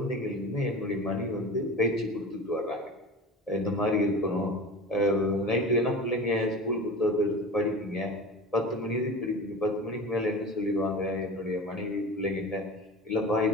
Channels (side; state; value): both; normal; correlation 0.34